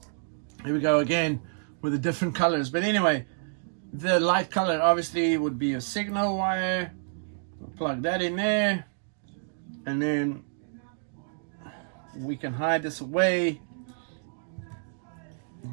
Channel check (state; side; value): silent; left; digital silence